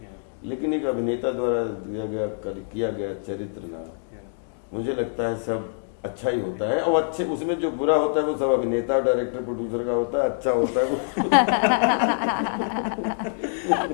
लेकिन एक अभिनेता द्वारा किया गया चरित्र ना, मुझे लगता है सब अच्छा ही होता है। और अच्छे उसमें जो बुरा होता है वो सब अभिनेता, डायरेक्टर, प्रोड्यूसर का होता है, अच्छा होता है वो।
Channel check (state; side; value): silent; right; digital silence